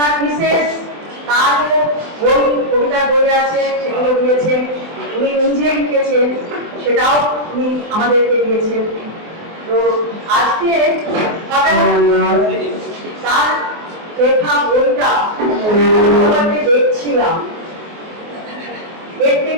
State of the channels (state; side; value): late; left; 24 ms